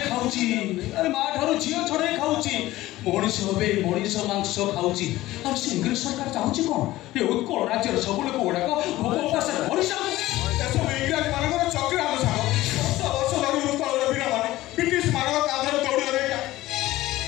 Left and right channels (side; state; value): right; quieter; 16.8 dB